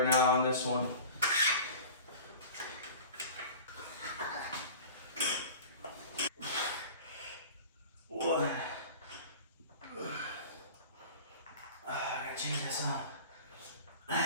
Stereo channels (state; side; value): inverted; both; correlation -0.38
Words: now on this one. What? I gotta change this up.